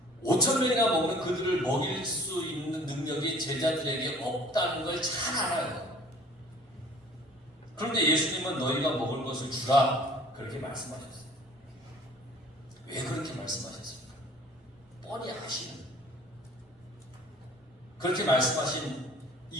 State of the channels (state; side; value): normal; both; correlation 0.50